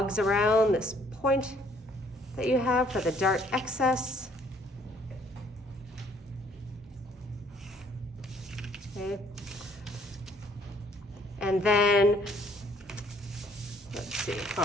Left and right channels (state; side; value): normal; both; correlation 0.63